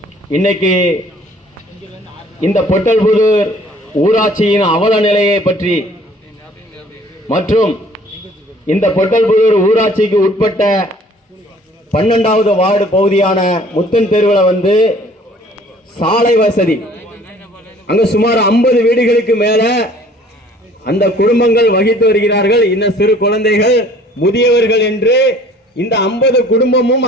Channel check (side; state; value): both; normal; correlation 0.54